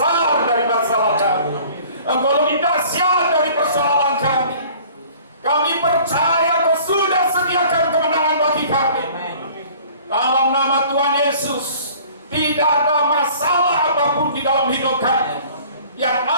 dari masalah kami. Engkau lebih dahsyat dari persoalan kami. Kami percaya Kau sudah sediakan kemenangan bagi kami. Dalam nama Tuhan Yesus, tidak ada masalah apapun di dalam hidup kami. Yang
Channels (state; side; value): inverted; both; correlation -0.50